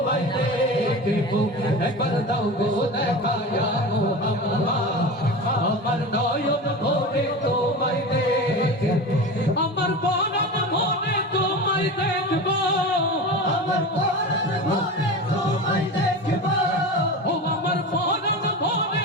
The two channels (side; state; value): both; normal; correlation 0.28